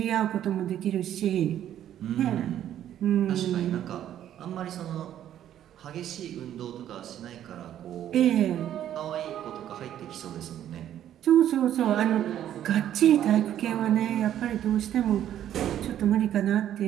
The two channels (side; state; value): left; quieter; 11.1 dB